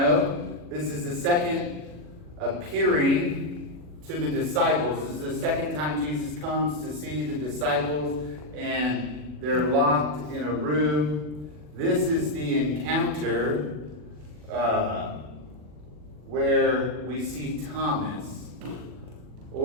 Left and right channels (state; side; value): late; left; 40 ms